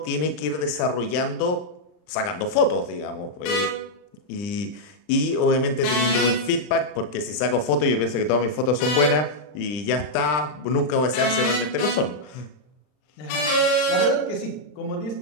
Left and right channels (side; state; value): right; late; 39 ms